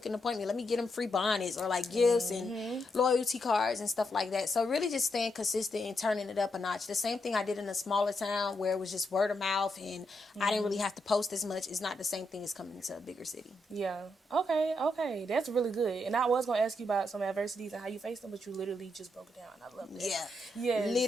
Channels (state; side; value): normal; both; correlation 0.81